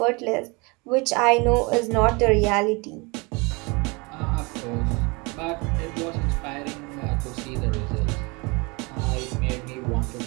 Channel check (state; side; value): quieter; left; 27.8 dB